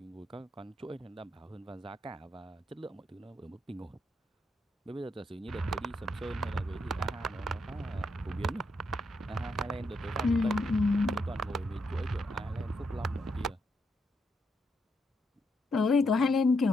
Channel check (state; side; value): normal; both; correlation 0.79